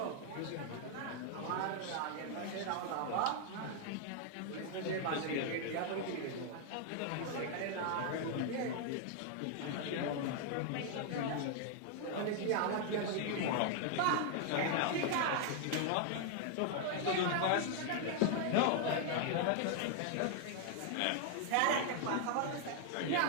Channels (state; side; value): different; both; correlation 0.00